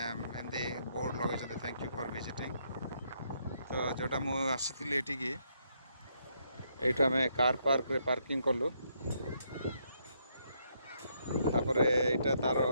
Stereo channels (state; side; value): inverted; both; correlation -0.74